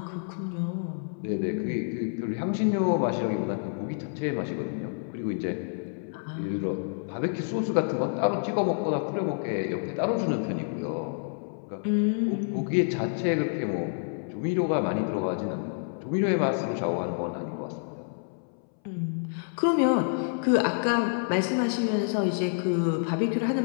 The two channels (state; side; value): silent; right; 59 dB below the other